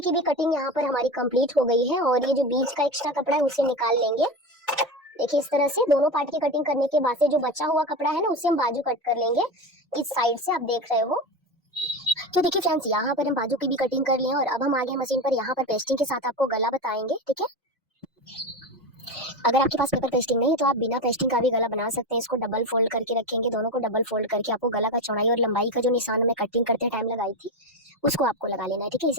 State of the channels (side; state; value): both; normal; correlation 0.21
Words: भी कटिंग यहाँ पर हमारी कंप्लीट हो गई है, और ये जो बीच का एक्स्ट्रा कपड़ा है उसे निकाल लेंगे। देखिए इस तरह से दोनों पार्ट की कटिंग करने के बाद से जो बचा हुआ कपड़ा है ना उसे हम बाजू कट कर लेंगे, इस साइड से आप देख रहे हो। तो देखिए फ्रेंड्स यहाँ पर हम बाजू की भी कटिंग कर लिए, और अब हम आगे मशीन पर यहाँ पर पेस्टिंग के साथ आपको गला बताएंगे, ठीक है। अगर आपके पास पेपर पेस्टिंग नहीं है तो आप बिना पेस्टिंग का भी गला बना सकते हैं। इसको डबल फोल्ड करके रखेंगे, दोनों को डबल फोल्ड करके आपको गला का चौड़ाई और लंबाई का जो निशान में कटिंग करते टाइम लगाई थी उसको आपको लगा लेना है, ठीक है।